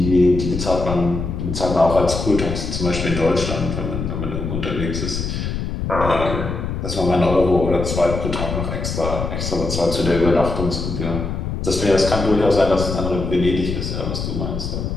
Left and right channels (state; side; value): noise; left; rumble, 4 dB below the sound